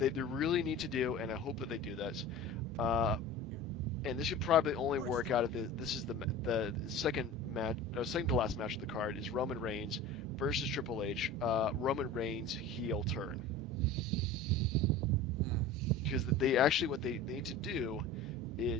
really need to do, and I hope that they do this. And this should probably only work out if this is the second match, second to last match of the card is Roman Reigns versus Triple H. Roman Reigns heel turn, because what they need to do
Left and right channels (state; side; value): normal; both; correlation 0.36